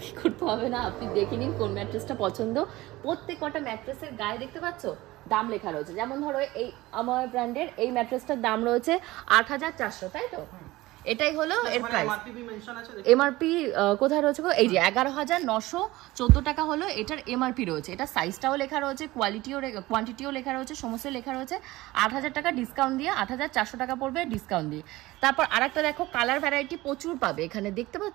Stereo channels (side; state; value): left; quieter; 18.7 dB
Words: করতে হবে না, আপনি দেখে নিন কোন ম্যাট্রেসটা পছন্দ। প্রত্যেক কটা ম্যাট্রেসের গায়ে দেখতে পাচ্ছ দাম লেখা রয়েছে, যেমন ধরো এই আমার ব্র্যান্ডের এই ম্যাট্রেসটার দাম রয়েছে 8400, তাই তো? এটাই হলো এর প্রাইস। এমআরপি কোথায় রয়েছে? এই যে 11914 টাকা হলো এটার এমআরপি রয়েছে। এটা সাইজটাও লেখা রয়েছে, কোয়ান্টিটিও লেখা রয়েছে, সমস্ত লেখা রয়েছে। 8000 টাকা ডিসকাউন্ট দিয়ে 8400 টাকা পড়বে ডিসকাউন্ট দিয়ে। তারপর আরেকটা দেখো, কালার ভ্যারাইটি প্রচুর পাবে এখানে, দেখতে